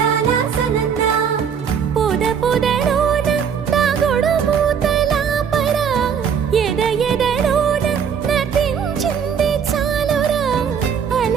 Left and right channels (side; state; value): left; quieter; 7.3 dB